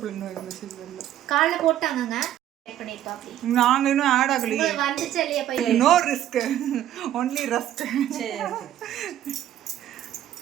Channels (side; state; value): left; quieter; 11.9 dB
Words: இன்னும் மெசேஜ் வரல. காலைல போட்டாங்கங்க. நாங்க இன்னும் ஆட் ஆகலையே. வந்துச்சு இல்லையா பையன்? No risk, only rusk.